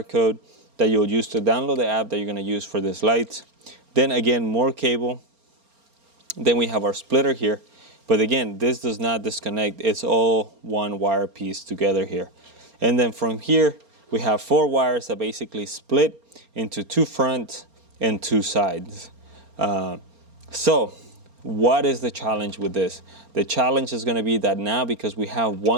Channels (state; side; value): late; left; 4.3 ms